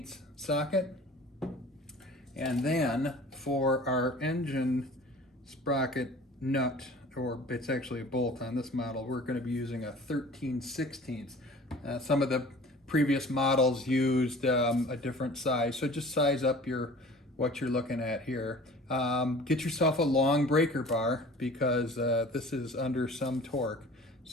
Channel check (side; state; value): both; normal; correlation 0.45